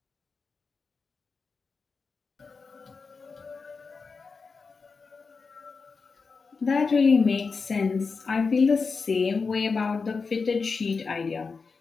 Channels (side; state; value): right; quieter; 4.7 dB